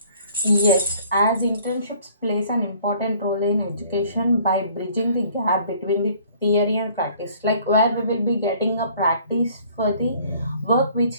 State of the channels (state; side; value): inverted; both; correlation -0.56